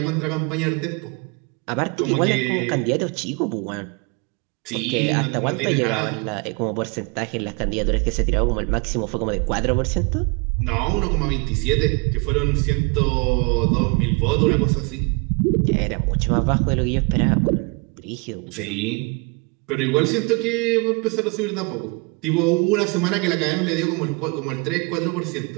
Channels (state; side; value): quieter; left; 30.3 dB